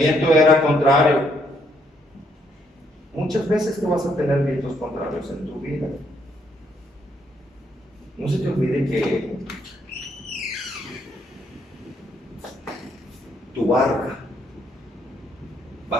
era contrario. Muchas veces tú vas a tener vientos contrarios en tu vida. No se te olvide que tu barca va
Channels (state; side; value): normal; both; correlation 0.72